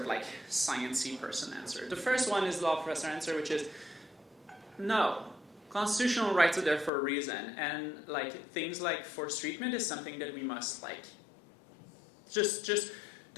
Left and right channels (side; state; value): right; drops out; at 6.9 s